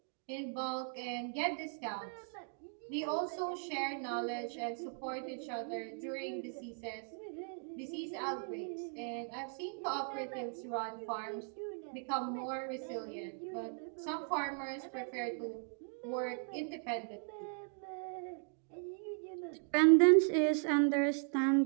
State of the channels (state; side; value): silent; left; 53 dB below the other